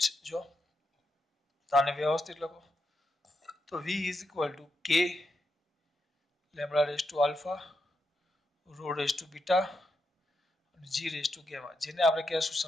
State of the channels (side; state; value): both; normal; correlation 0.84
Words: જ જો આને વ્યવસ્થિત લખો તો v is equal to k lambda raised to alpha rho raised to beta અને g raised to gamma, જેને આપણે કહેશું